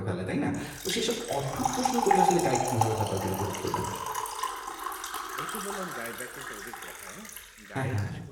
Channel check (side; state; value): both; identical; correlation 1.00